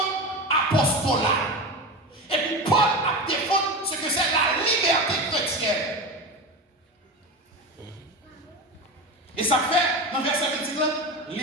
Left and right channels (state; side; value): normal; both; correlation 0.24